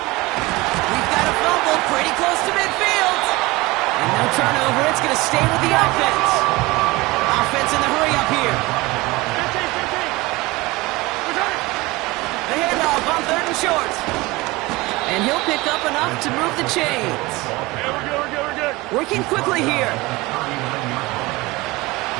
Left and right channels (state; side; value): quieter; left; 21.7 dB